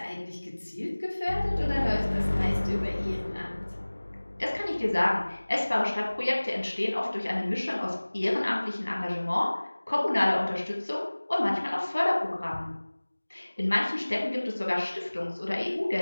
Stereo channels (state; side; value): inverted; both; correlation -1.00